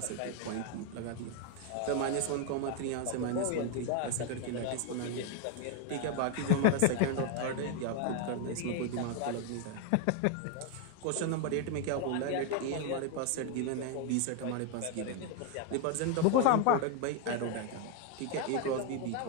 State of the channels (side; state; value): both; different; correlation 0.01